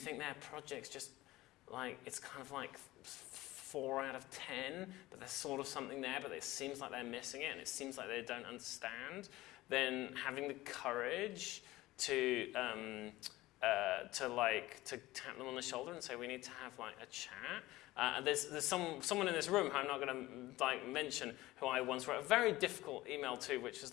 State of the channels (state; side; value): quieter; right; 17.9 dB